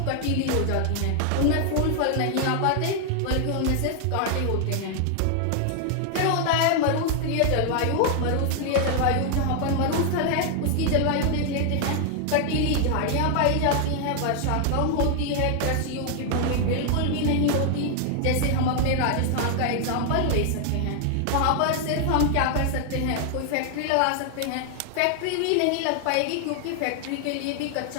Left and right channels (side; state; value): both; different; correlation 0.00